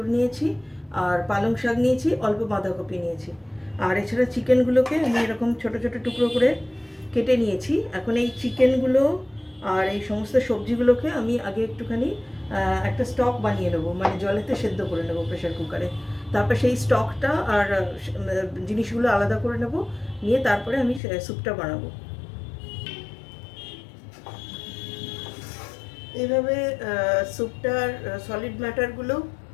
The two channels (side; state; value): right; drops out; at 21.0 s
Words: নিয়েছি, আর পালং শাক নিয়েছি, অল্প বাঁধাকপি নিয়েছি। আর এছাড়া চিকেনগুলোকে আমি এরকম ছোট ছোট টুকরো করে কেটে নিয়েছি। এখন এই চিকেনগুলো আর এই সমস্ত সবজিগুলোকে আমি আগে একটুখানি একটা স্টক বানিয়ে নেবো, মানে জলেতে সেদ্ধ করে নেবো প্রেশার কুকারে। তারপর সেই স্টকটা আর জিনিসগুলো আলাদা করে নেব, নিয়ে তারপরে আমি স্যুপটা বানাবো। এইভাবে স্যুপটার সলিড ম্যাটারগুলো